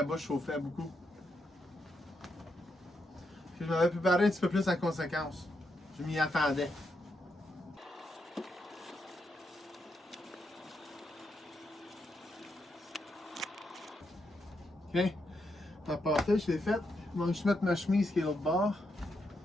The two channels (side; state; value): both; normal; correlation 0.81